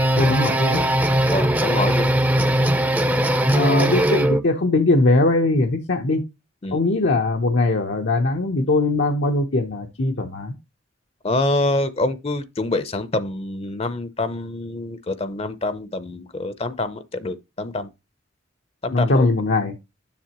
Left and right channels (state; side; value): normal; both; correlation 0.53